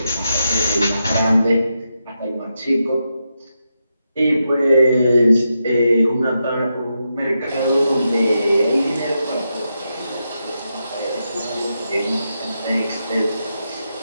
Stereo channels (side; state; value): both; inverted; correlation -0.86